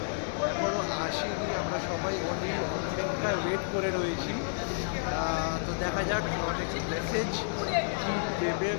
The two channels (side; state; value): right; silent; digital silence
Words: এখনও আসেনি, আমরা সবাই অনেক অপেক্ষায় ওয়েট করে রয়েছি। তো দেখা যাক অনেক মেসেজ দেবে